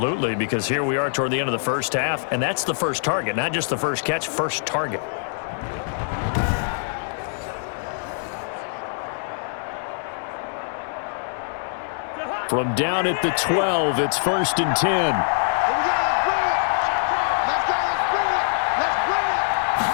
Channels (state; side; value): silent; right; digital silence